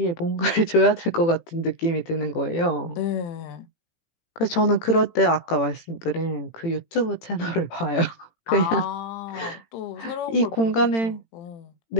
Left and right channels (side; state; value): right; late; 18 ms